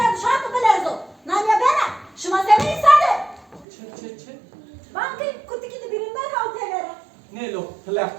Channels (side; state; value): left; drops out; at 3.7 s